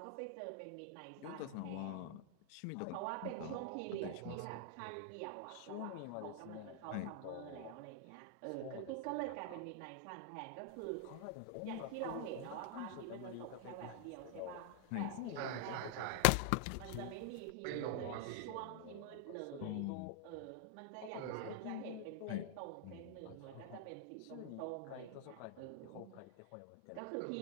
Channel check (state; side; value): different; both; correlation 0.00